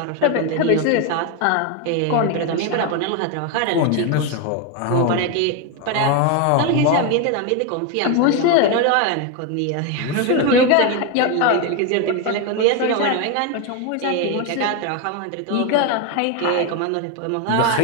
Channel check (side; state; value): both; different; correlation 0.02